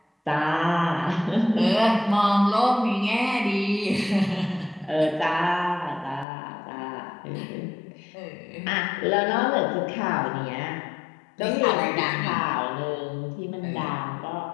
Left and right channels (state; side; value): drops out; right; at 6.2 s